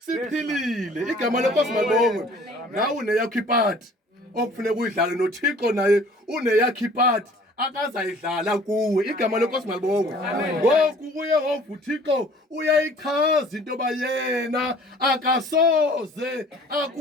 Igama lenkosi malibongwe. Nawe uneyakho ipati okufuneka uyidlale noThixo naye uneyakho ipati akazayidlala kuwe. Igama lenkosi malibongwe. Ngoku uYehova uThixo uyayichaza into yoba yena akasoze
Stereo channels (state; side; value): normal; both; correlation 0.51